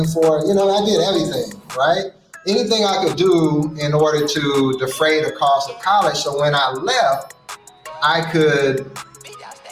for it. I did everything, right? Anything I could do in order to defray the cost of college. So when I left, I could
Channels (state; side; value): identical; both; correlation 1.00